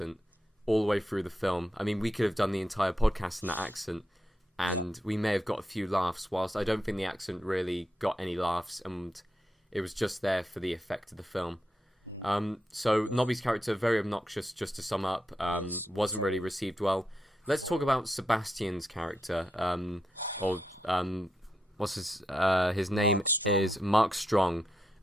all the way through the film. I mean, we could have done the entire podcast in that accent, and we may have got a few laughs, whilst I don't think the accent really got any laughs, and it was just there for the effect of the film. So Nobby's character, very obnoxious, just to sum up, wasn't really received well. Let's talk about Sebastian's character, what's his name is Mark Strong,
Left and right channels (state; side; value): normal; both; correlation 0.84